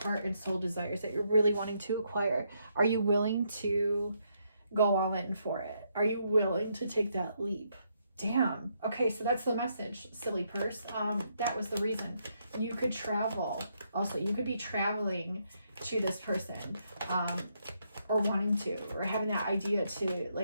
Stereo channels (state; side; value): inverted; both; correlation -0.76